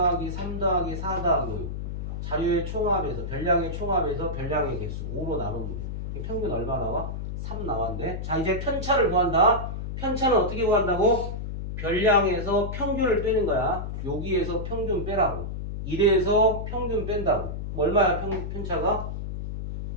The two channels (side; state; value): left; noise; hum, 5 dB below the sound